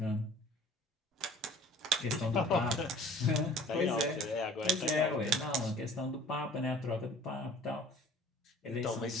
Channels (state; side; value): normal; both; correlation 0.49